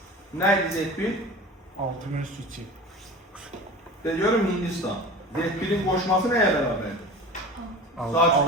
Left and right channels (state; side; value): normal; both; correlation 0.36